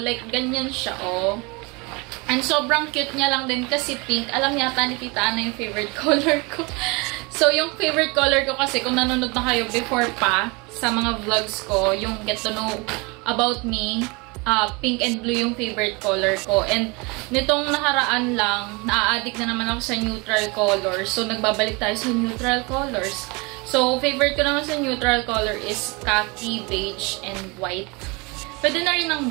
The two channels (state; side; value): quieter; left; 27.6 dB